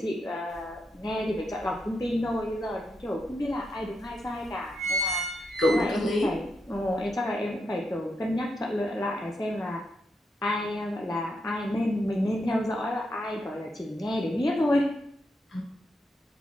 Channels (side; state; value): both; normal; correlation 0.82